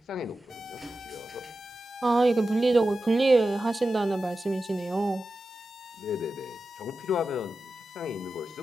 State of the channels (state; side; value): normal; both; correlation 0.92